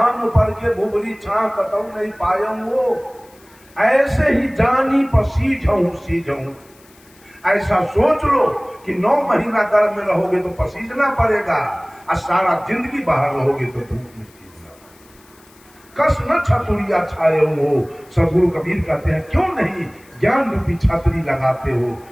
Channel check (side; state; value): left; noise; hiss, 28 dB below the sound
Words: पर के भुगली छां कतऊ नहीं पायम वो, ऐसे ही जानी पर सीझऊं। ऐसा सोच लो कि 9 महीना गर्भ में रहोगे तो पसीजना पड़ेगा, और सारा जिंदगी बाहर रहोगे तो धूप में सीझना। कस न छतुरिया छाए हो। सदगुरु कबीर कहते हैं, क्यों नहीं ज्ञान रूपी छतरी लगाते हो